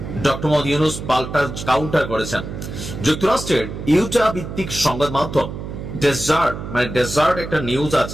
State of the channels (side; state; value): right; noise; hum, 8 dB below the sound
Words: ডক্টর মোহাম্মদ ইউনূস পাল্টা কাউন্টার করেছেন। যুক্তরাষ্ট্রের ইউটা ভিত্তিক সংবাদ মাধ্যম ডেজার্ট একটা নিউজ